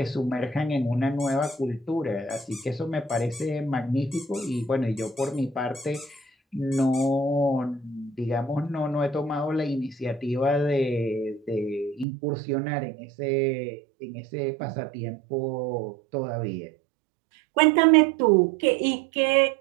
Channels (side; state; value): left; drops out; at 12.1 s